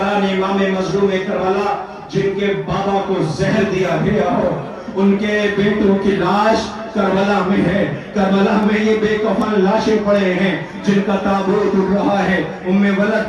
इमाम मजलूम करबला, जिनके बाबा को जहर दिया गया हो, उनके बेटों की लाश करबला में है। करबला में ये बेकफन लाशें पड़े हैं, जिनका ताबूत उड़ रहा है। उम्मे वलद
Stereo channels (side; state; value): both; identical; correlation 1.00